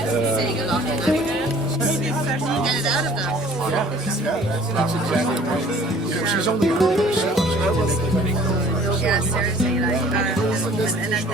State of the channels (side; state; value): both; normal; correlation 0.52